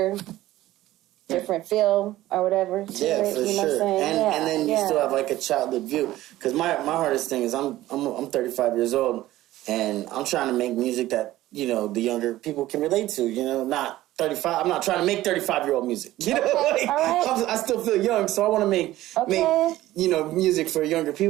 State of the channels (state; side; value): quieter; left; 15.6 dB